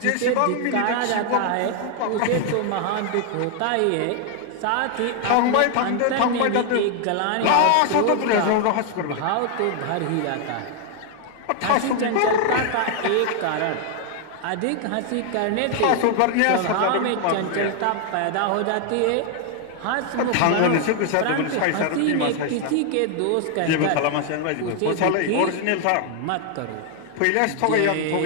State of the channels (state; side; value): different; both; correlation 0.00